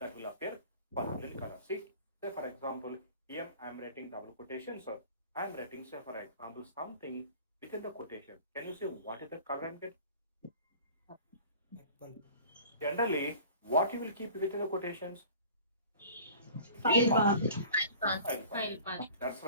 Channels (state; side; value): inverted; both; correlation -0.45